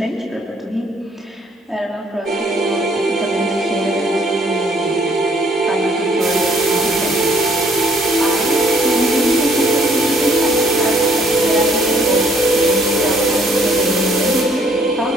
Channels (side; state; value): both; normal; correlation 0.63